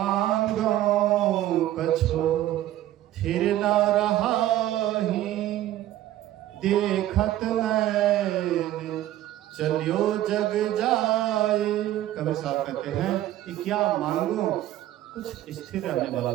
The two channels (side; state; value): left; quieter; 13.8 dB